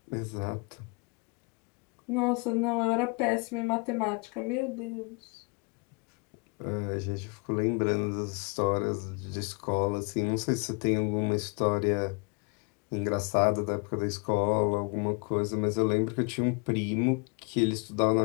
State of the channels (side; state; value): right; quieter; 31.8 dB